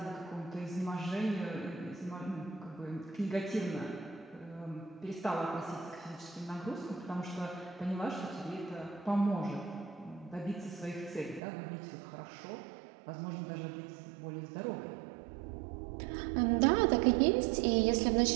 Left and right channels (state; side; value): drops out; left; at 11.4 s